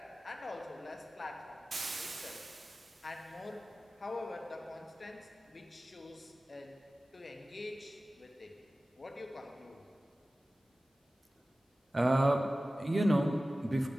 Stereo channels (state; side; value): normal; both; correlation 0.96